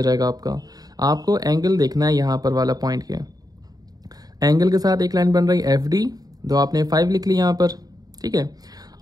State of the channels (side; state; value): left; late; 0.18 ms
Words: जाएगा आपका। आपको एंगल देखना है यहाँ पर वाला पॉइंट के, एंगल के साथ एक लाइन बन रही है FD, तो आपने 5 लिख ली यहाँ पर, ठीक है।